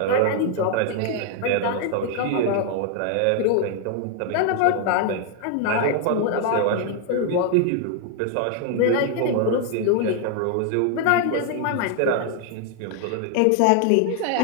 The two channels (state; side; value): different; both; correlation 0.00